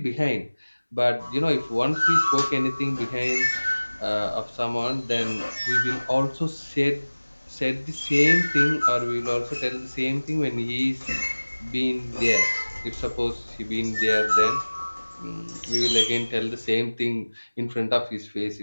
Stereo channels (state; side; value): inverted; both; correlation -1.00